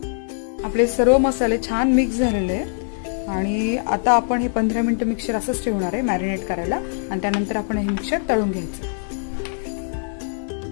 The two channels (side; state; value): right; silent; digital silence